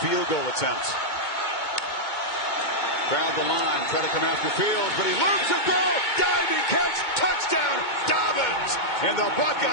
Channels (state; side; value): late; right; 2.2 ms